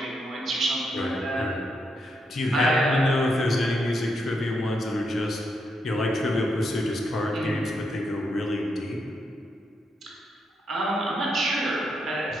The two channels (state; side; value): normal; both; correlation 0.80